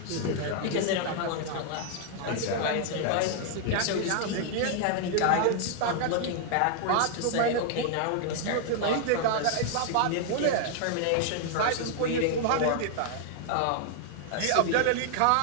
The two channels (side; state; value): both; different; correlation 0.00